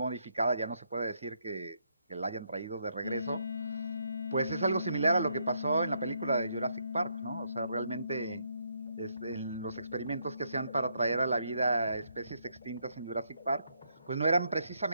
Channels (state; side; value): inverted; both; correlation -0.75